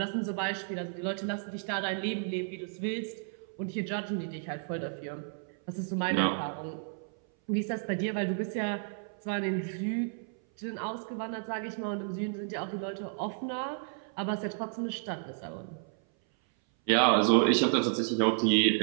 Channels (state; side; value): silent; left; 56 dB below the other